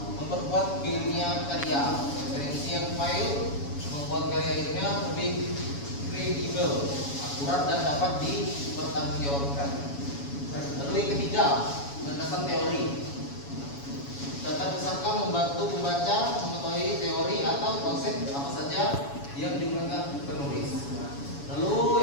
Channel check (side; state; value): right; late; 7.1 ms